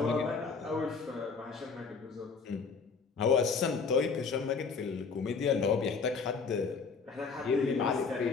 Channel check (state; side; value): quieter; right; 5.1 dB